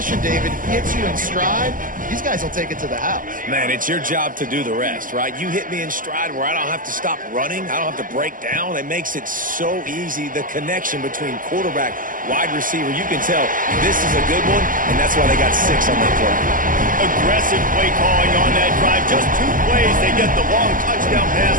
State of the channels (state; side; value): late; left; 0.39 ms